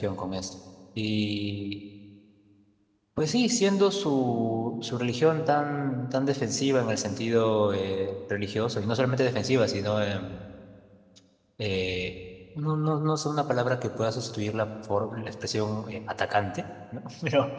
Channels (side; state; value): both; identical; correlation 1.00